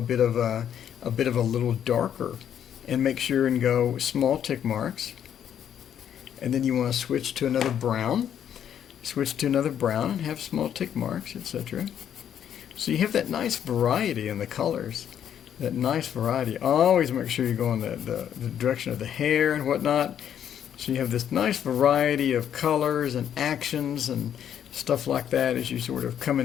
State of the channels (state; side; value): quieter; right; 9.5 dB